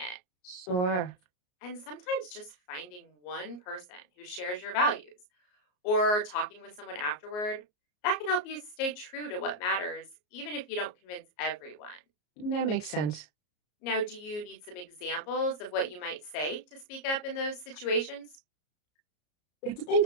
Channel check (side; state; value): right; late; 33 ms